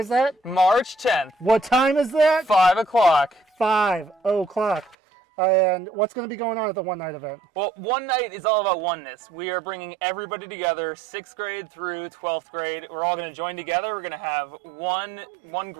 that? March 10th, What time is that? 5 o'clock. 5 o'clock. And what's going to be going on at the One Night event? Well, one night is all about oneness. We are bringing everybody together, 6th grade through 12th grade. We're all going to join together. We're going to have one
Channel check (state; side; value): drops out; left; at 5.0 s